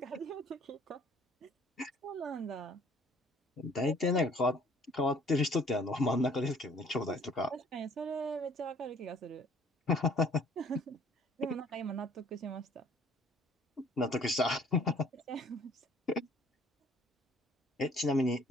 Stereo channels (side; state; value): both; normal; correlation 0.57